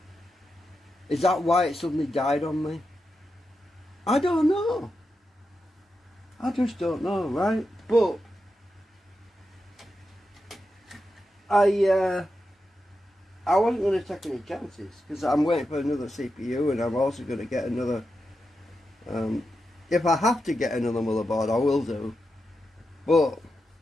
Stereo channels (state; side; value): normal; both; correlation 0.88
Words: Is that why it suddenly died on me? I don't know. I just don't know, right? But I wasn't going to take any chances, because I'm waiting for another CPU, and I'm also going to get another. If I have to get another motherboard, I will do. But